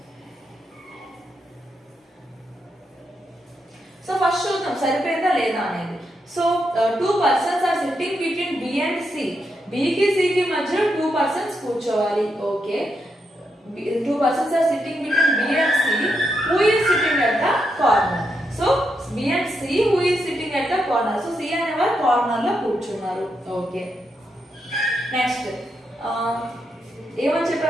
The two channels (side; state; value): both; normal; correlation 0.82